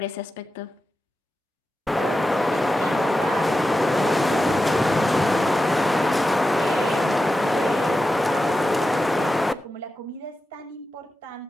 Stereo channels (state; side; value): normal; both; correlation 0.92